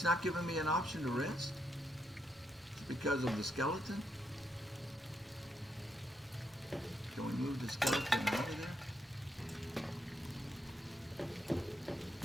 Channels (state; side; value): normal; both; correlation 0.79